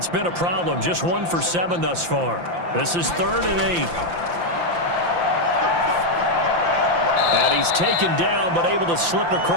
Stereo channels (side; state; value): left; late; 5.8 ms